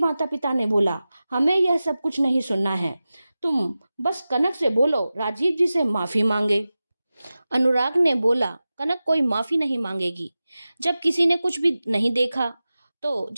पिता ने बोला, हमें यह सब कुछ नहीं सुनना है। तुम बस कनक से बोलो राजीव जी से माफी मांगे। अनुराग ने बोला, कनक कोई माफी नहीं मांगेगी। जब किसी ने कुछ भी नहीं देखा, तो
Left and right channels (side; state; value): both; inverted; correlation -0.95